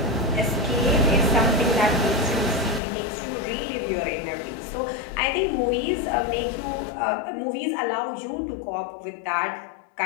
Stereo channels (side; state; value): right; drops out; at 2.8 s